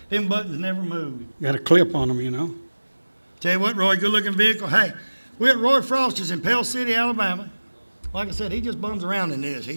Them buttons never move. Got a clip on them, you know. Tell you what, Roy, good looking vehicle. Hey, we're at Roy Froster's in Pell City, Alabama. Like I said, he just bums around in this. He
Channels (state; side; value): inverted; both; correlation -1.00